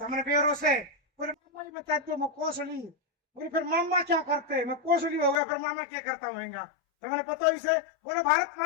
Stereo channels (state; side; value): drops out; right; at 5.4 s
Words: बेरों से बोले मामा ही बता दो, मैं कोसली। बोले फिर मामा क्या करते, मैं कोसली हो गया, फिर मामा क्या करता हूँगा। तो मैंने पता इसे बोले भारत